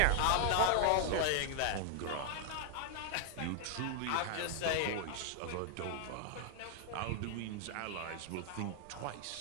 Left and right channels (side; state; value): both; different; correlation 0.00